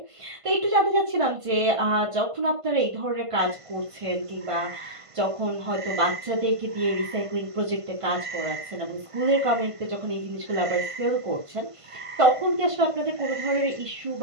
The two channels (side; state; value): left; late; 1.5 ms